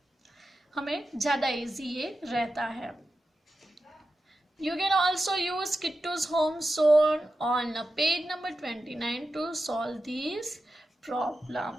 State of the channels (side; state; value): both; normal; correlation 0.91